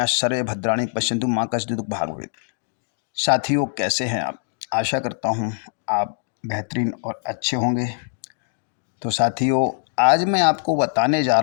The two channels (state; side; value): silent; right; digital silence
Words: सर्वे भद्राणि पश्यन्तु मा कश्चित् दुःख भाग् भवेत्। साथियों, कैसे हैं आप? आशा करता हूँ आप बेहतरीन और अच्छे होंगे। तो साथियों, आज मैं आपको बताने जा